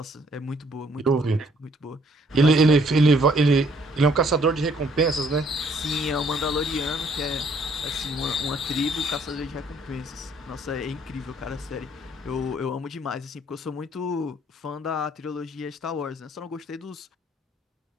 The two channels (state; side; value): normal; both; correlation 0.64